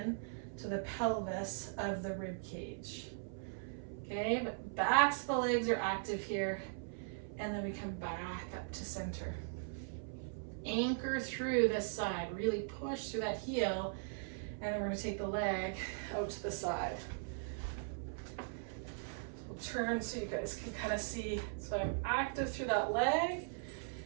to the pelvis of the rib cage. Okay, but backs of the legs are active here, and then we come back up to center. Anchor through this side, really push through that heel, and then we're going to take the leg out to the side. We'll turn so you guys can kind of see. So I'm active through that leg,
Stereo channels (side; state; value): left; silent; 51 dB below the other